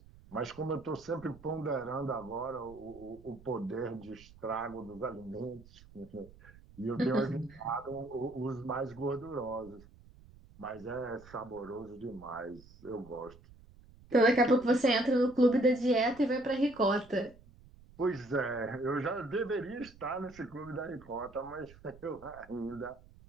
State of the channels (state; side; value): noise; right; rumble, 22 dB below the sound